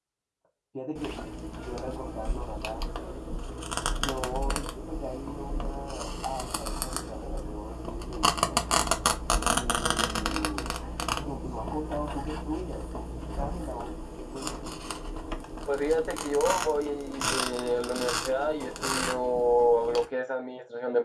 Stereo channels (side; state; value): both; identical; correlation 1.00